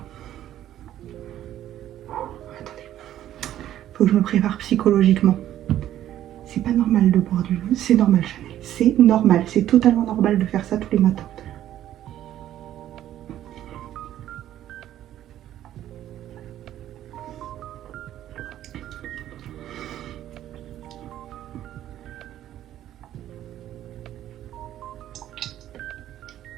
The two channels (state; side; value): quieter; left; 12.2 dB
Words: Attendez. Faut que je me prépare psychologiquement. C'est pas normal de boire du vin. C'est normal, Chanel. C'est normal. C'est totalement normal de faire ça tous les matins.